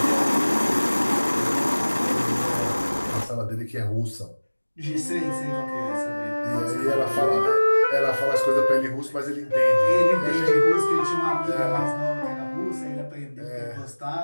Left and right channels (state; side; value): inverted; both; correlation -1.00